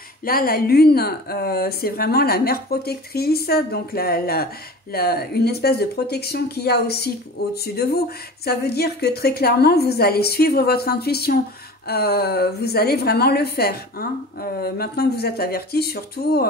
Là, la lune, c'est vraiment la mère protectrice, donc une espèce de protection qu'il y a aussi au-dessus de vous. Ça veut dire que très clairement, vous allez suivre votre intuition. Vous allez vraiment le faire, hein. Maintenant que vous êtes averti, surtout,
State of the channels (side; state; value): both; normal; correlation 0.38